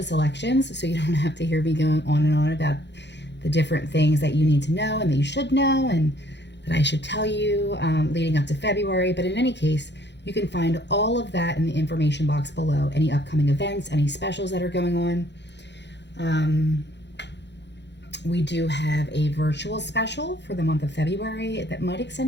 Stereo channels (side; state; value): right; late; 0.51 ms